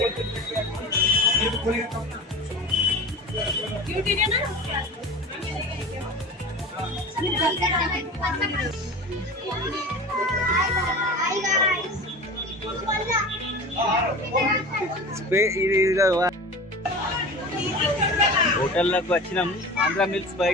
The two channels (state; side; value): normal; both; correlation 0.34